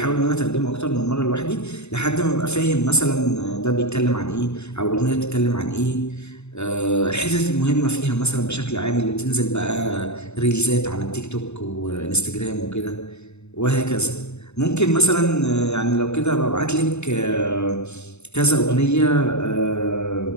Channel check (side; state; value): right; late; 0.81 ms